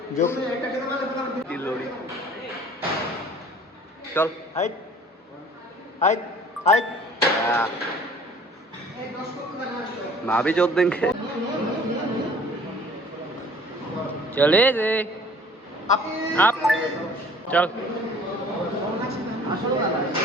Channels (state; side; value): normal; both; correlation 0.52